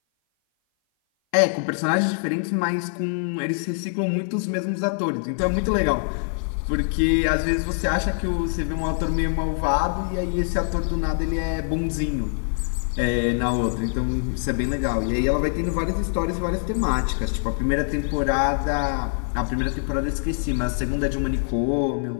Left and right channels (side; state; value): right; silent; 57 dB below the other